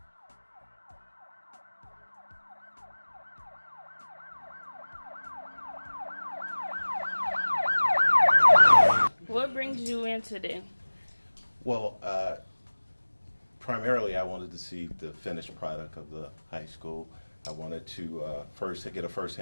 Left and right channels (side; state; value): both; inverted; correlation -1.00